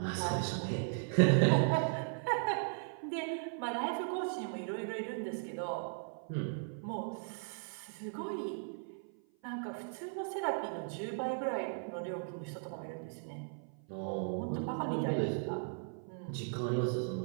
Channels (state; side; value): silent; left; 53 dB below the other